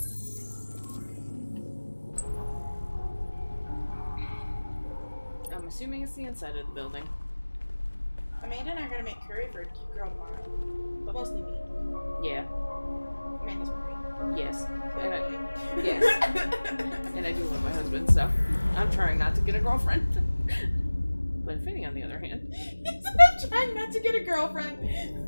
I'm assuming it's the inside of the building. Amanda and I are gonna make curry for a cute girl tomorrow. But mostly me. Yeah. Amanda's married. Yes. Good And boy. yes. And I do love my husband, so I'm trying not to get a girlfriend. But Finney, on the other hand, He's trying not to get a girlfriend.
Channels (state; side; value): inverted; both; correlation -1.00